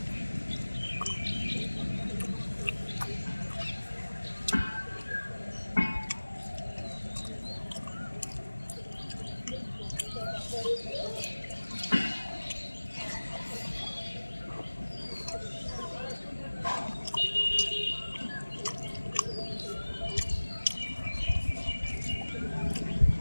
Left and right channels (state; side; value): inverted; both; correlation -1.00